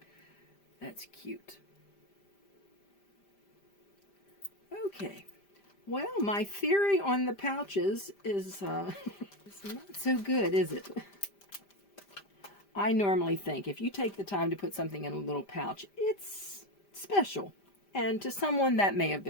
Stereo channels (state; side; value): late; right; 5.0 ms